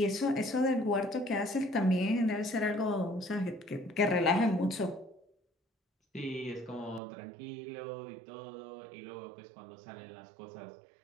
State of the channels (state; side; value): drops out; left; at 7.0 s